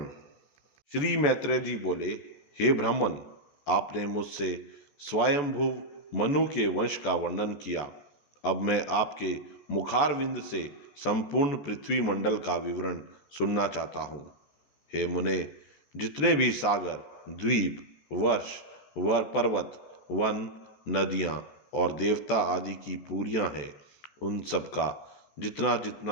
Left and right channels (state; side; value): late; right; 14 ms